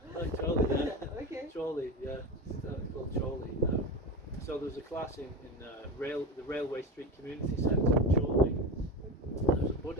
Like Chorley, yeah. Okay. Chorley, yeah. It's called Chorley. So there was a class in the Railway Street Community Centre in Chorley. And there was a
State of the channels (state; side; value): normal; both; correlation 0.24